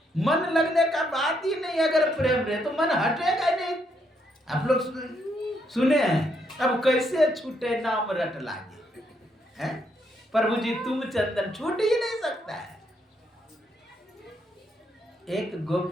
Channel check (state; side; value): normal; both; correlation 0.75